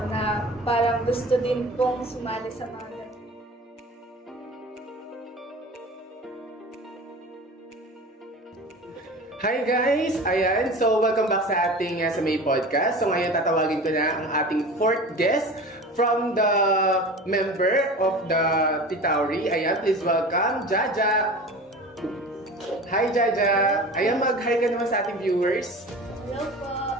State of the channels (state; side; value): normal; both; correlation 0.36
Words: na parang gusto din pong sumali sa mga ganito. Hi guys! Ayan, so welcome back sa ating sa May Podcast. So ngayon tatawagin ko na ang ating fourth guest from the member of the Titauri. Ayan, please welcome Jaja! Hi Jaja! Ayan, mag-hi ka naman sa ating viewers. Hello po!